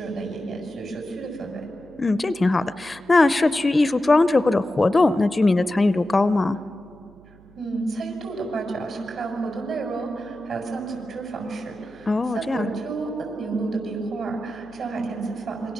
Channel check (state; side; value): noise; right; hum, 25 dB below the sound